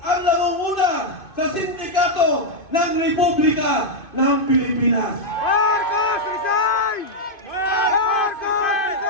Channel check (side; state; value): right; late; 2.5 ms